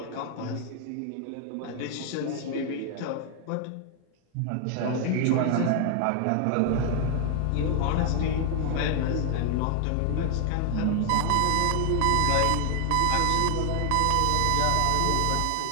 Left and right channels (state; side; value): different; both; correlation 0.00